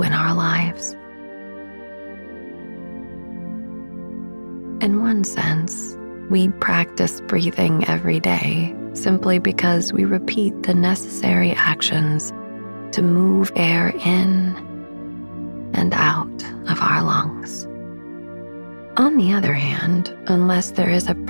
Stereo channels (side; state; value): both; inverted; correlation -1.00